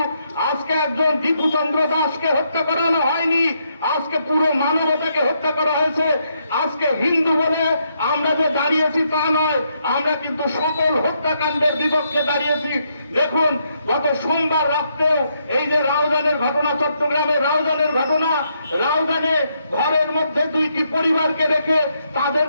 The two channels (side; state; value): both; inverted; correlation -0.77